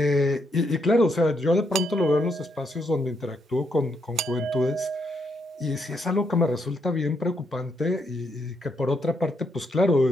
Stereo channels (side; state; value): both; normal; correlation 0.77